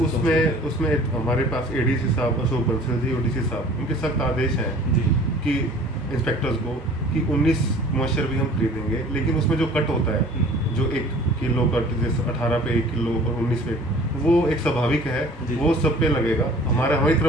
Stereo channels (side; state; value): both; normal; correlation 0.48